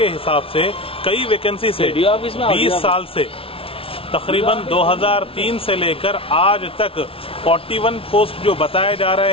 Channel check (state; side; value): late; right; 0.26 ms